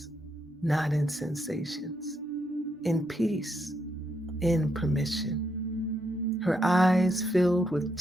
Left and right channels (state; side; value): normal; both; correlation 0.79